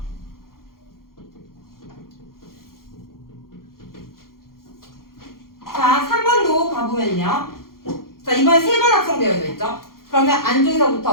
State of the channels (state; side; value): late; right; 0.92 ms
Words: 자, 3번도 가보면요. 자, 이번에 3번 합성되어져 있죠? 그러면